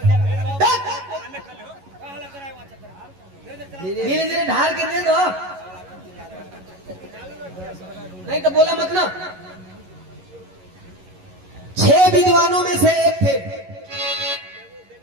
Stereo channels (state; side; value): late; left; 11 ms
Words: धीरे धीरे ढाल के दे दो, नहीं तो बोला मत ना। 6 विद्वानों में से एक थे